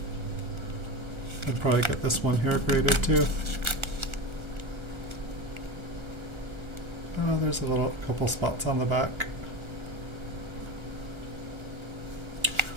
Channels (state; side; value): late; left; 1.3 ms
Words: I'd probably get this one here graded too. Oh, there's a couple spots on the back.